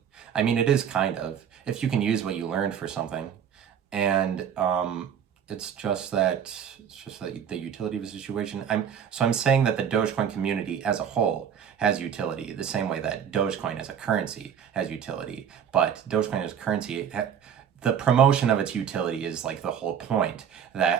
I mean, it is kind of, if you can use what you learned for something. And it's just that the utility of a situation. I'm saying that the Dogecoin community as a whole has utility, the same way that Dogecoin as a currency has utility. But Dogecoin as a currency, the promotion of its utility is like the whole point.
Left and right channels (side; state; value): left; quieter; 8.3 dB